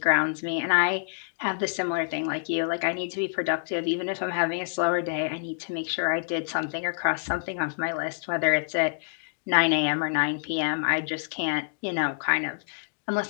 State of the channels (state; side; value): silent; right; digital silence